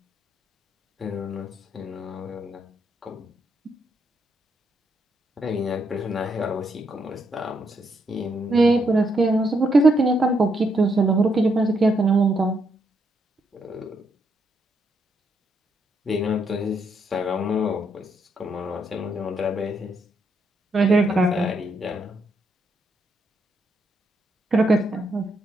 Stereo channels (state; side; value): normal; both; correlation 0.77